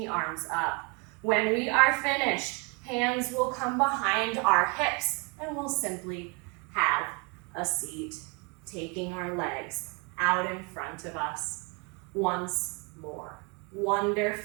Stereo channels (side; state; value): left; quieter; 32.4 dB